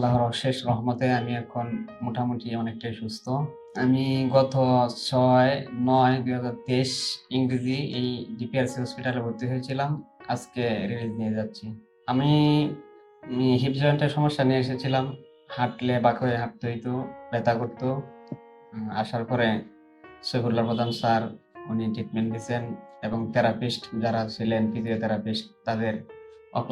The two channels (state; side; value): identical; both; correlation 1.00